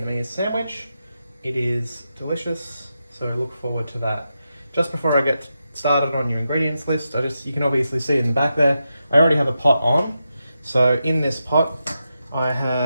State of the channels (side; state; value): both; inverted; correlation -0.87